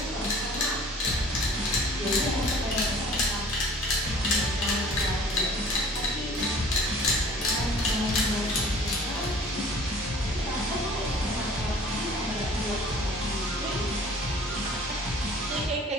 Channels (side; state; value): both; normal; correlation 0.49